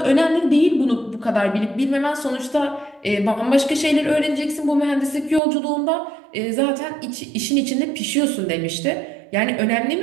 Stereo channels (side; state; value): left; drops out; at 5.4 s